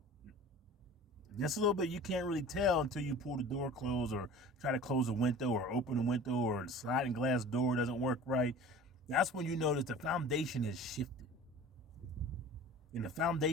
Just a little bit. You can't really tell until you pull the door closed, or try to close a window, or open a window, or the sliding glass door doesn't work right. That's when you notice the foundation is shifted. And the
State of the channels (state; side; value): normal; both; correlation 0.41